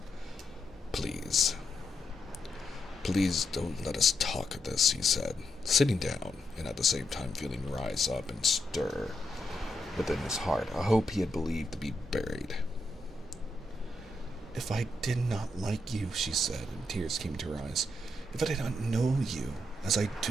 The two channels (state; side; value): normal; both; correlation 0.82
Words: Please. Please don't let us talk of this, he said, sitting down, and at the same time feeling rise up and stir within his heart a hope he had believed to be buried. If I did not like you, she said, and tears came to her eyes, if I did not know you, as I